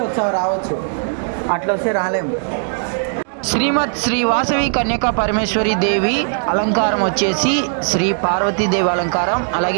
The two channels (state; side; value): silent; left; 67 dB below the other